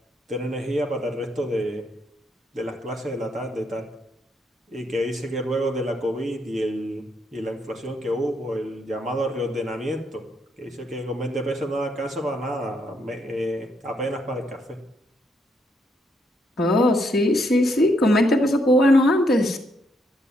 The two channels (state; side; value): normal; both; correlation 0.75